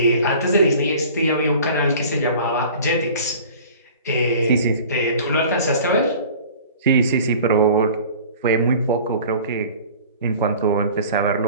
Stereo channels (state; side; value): inverted; both; correlation -0.44